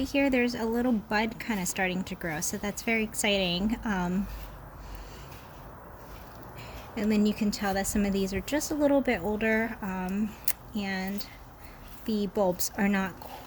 here, there's a little bud kind of starting to grow. So that's very exciting. And then you can tell that some of these are just a little bit older, and the bulbs are not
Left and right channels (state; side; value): identical; both; correlation 1.00